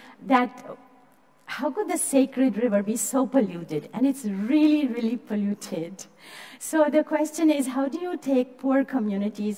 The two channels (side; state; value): both; identical; correlation 1.00